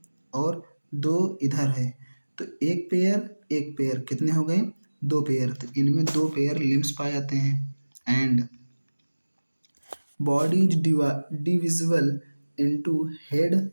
और दो इधर है, तो एक पेयर कितने हो गए, दो पेयर, तो इनमें दो पेयर लिम्स पाए जाते हैं। And body is divisible into head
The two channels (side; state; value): both; inverted; correlation -1.00